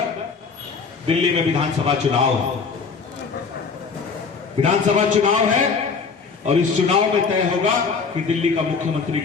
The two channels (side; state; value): right; quieter; 5.2 dB